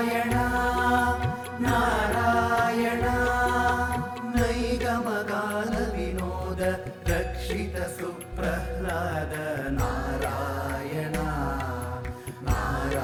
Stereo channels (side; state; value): both; identical; correlation 1.00